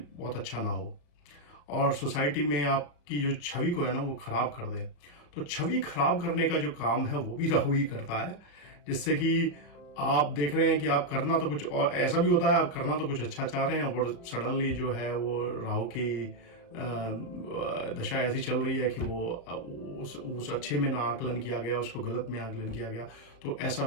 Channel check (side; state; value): right; late; 35 ms